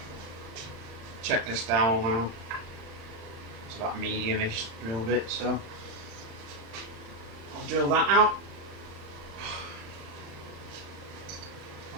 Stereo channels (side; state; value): left; late; 35 ms